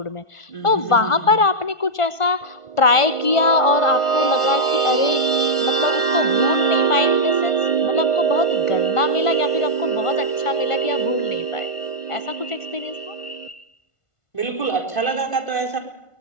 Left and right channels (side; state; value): right; late; 1.5 ms